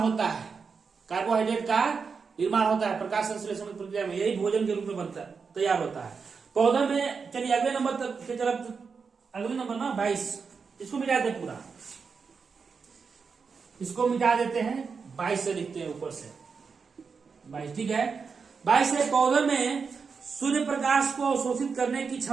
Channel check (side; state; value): left; quieter; 5.4 dB